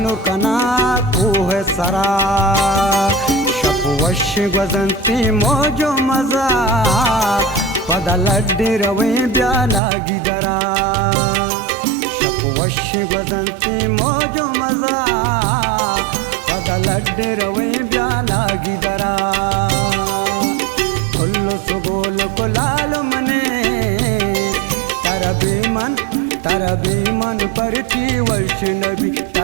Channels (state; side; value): drops out; left; at 9.8 s